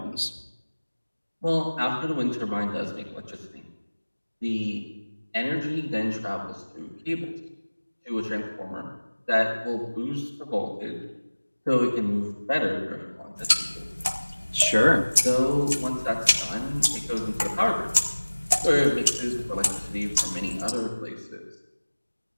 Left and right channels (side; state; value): both; inverted; correlation -1.00